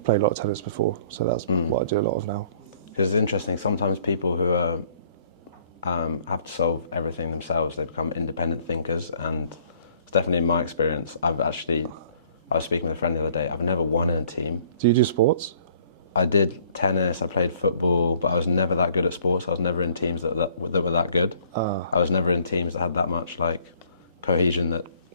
played a lot of tennis before, so that's what I do a lot of now. Because it's interesting, sometimes people who are, have to solve everything themselves, they become independent thinkers, and it's definitely in my experience. I was speaking with a friend the other day, I've never won in a team. Do you do sports? I did tennis, I played football, but I was never that good at sports. I was never in teams that were that good. I was never in teams that had that much like cohesion, that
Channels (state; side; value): inverted; both; correlation -0.58